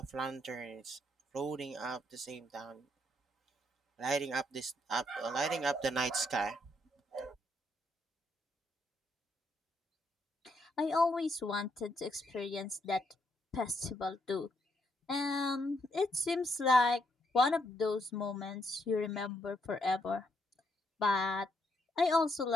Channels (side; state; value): both; normal; correlation 0.75